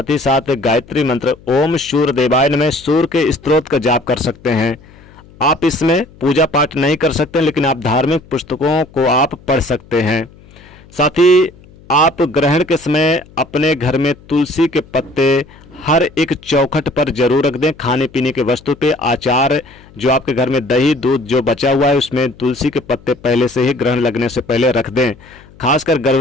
ही साथ गायत्री मंत्र, ओम सूर्य देवाय नमः, सूर्य के स्तोत्र का जाप कर सकते हैं। आप इसमें पूजा पाठ नहीं कर सकते, लेकिन आप धार्मिक पुस्तकों को आप पढ़ सकते हैं। साथ ही आप ग्रहण के समय अपने घर में तुलसी के पत्ते हर एक चौखट पर जरूर रख दें। खाने पीने के वस्तु पे, आचार, जो आपके घर में दही दूध जो बचा हुआ है उसमें तुलसी के पत्ते पहले से ही ग्रहण लगने से पहले रख दें। खासकर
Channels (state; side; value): noise; left; hum, 24 dB below the sound